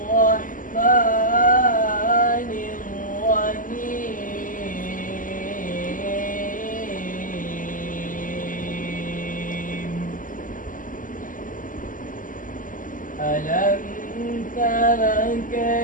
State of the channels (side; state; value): right; late; 0.39 ms